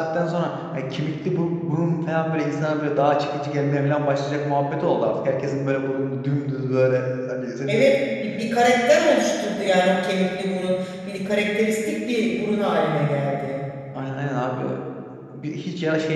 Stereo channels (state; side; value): identical; both; correlation 1.00